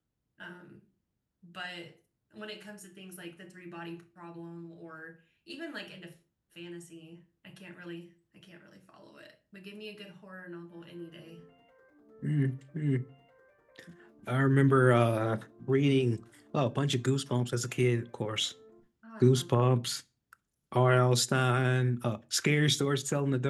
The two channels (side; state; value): both; identical; correlation 1.00